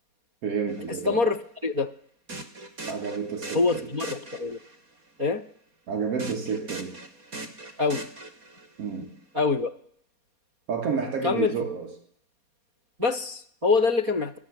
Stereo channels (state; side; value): late; left; 4.2 ms